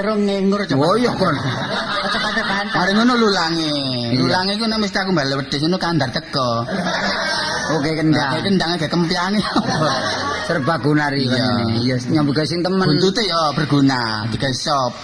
ngengur coba. Oh iya kon. Cepet bantah. Mari ngono lulange. Iya. Lulange iku nek mesti aku mbale wedhus ngono kandar teko. Oke Nah, kendang. kendang agak kempyange. Serba gunari Iya. kan ini. Iya, nyambut gawe sing temen. Buntute ya berguna, digawe sop.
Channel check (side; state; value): both; identical; correlation 1.00